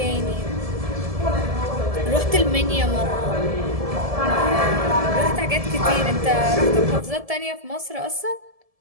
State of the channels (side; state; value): left; late; 1.7 ms